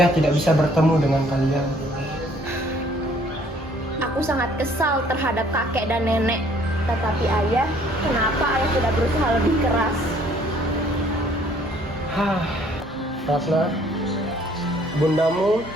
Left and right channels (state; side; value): normal; both; correlation 0.60